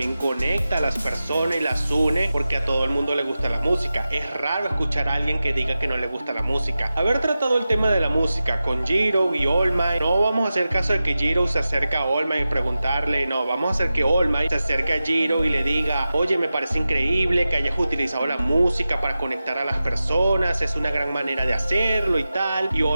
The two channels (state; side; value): inverted; both; correlation -0.94